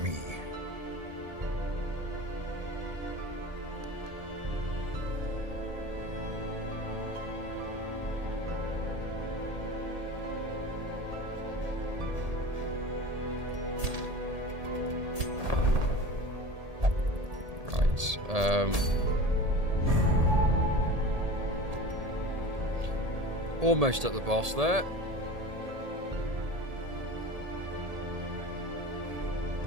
Right. Almost at the boss there.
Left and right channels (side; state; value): left; late; 1.8 ms